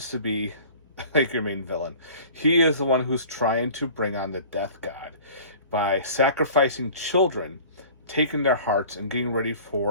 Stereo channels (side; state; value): both; inverted; correlation -0.45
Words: to be like your main villain. He is the one who's trying to bring on the death god by sacrificing children, taking their hearts, and getting ready